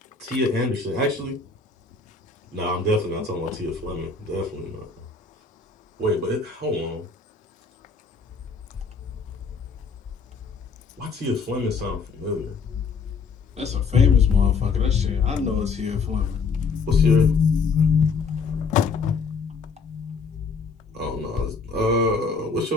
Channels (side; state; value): right; quieter; 4.8 dB